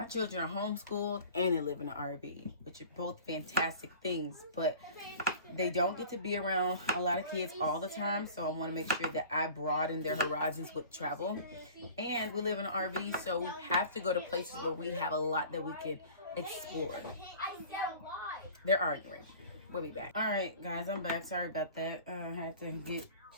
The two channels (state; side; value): inverted; both; correlation -0.43